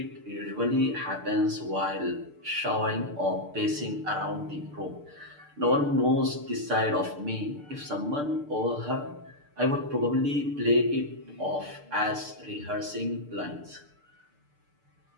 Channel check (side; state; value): left; late; 6.7 ms